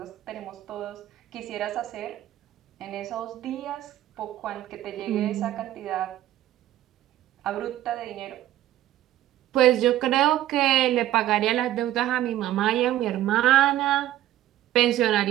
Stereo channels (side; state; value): left; quieter; 13.5 dB